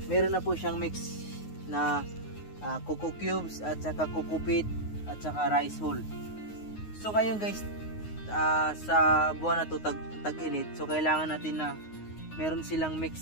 Meron na po siyang mix na coco cubes at saka coco peat at saka rice hull. So ngayon guys, sa buwan na to tag-init, so kailangan natin na meron silang mix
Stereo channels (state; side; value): late; right; 9.5 ms